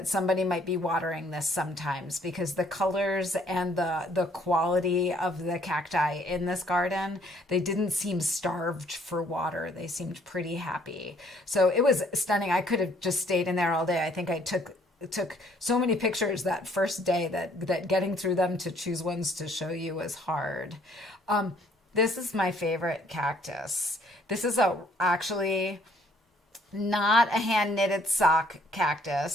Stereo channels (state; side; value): normal; both; correlation 0.63